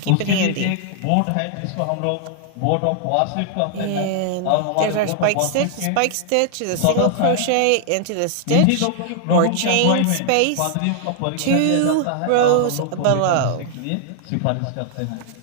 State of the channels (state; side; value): different; both; correlation 0.00